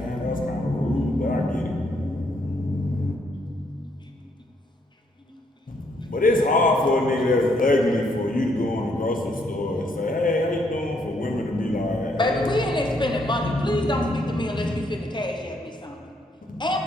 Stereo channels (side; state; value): both; normal; correlation 0.72